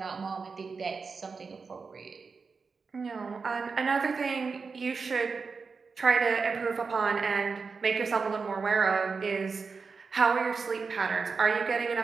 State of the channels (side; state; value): left; quieter; 4.9 dB